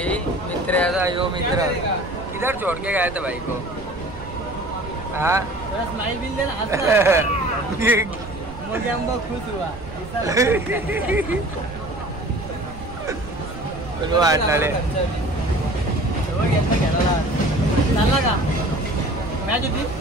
मित्र याचा यो मित्र. किधर छोड़ के गया था भाई को. हाँ. थोड़ा स्माइल बिल देना हंसना. मुझे हम बहुत खुश हुआ. वाटले चालला का मॅच होती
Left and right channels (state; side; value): noise; right; rumble, 15 dB below the sound